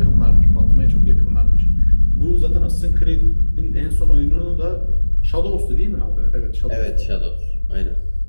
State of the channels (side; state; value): both; inverted; correlation -1.00